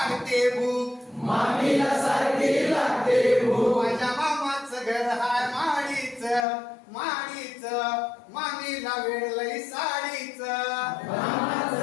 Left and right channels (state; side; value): drops out; right; at 6.5 s